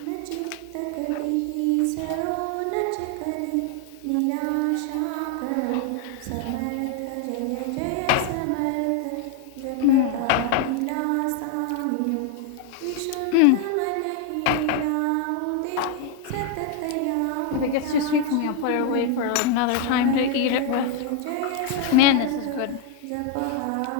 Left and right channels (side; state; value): both; different; correlation 0.00